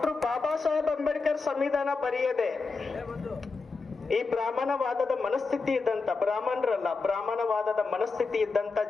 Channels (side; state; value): right; quieter; 4.2 dB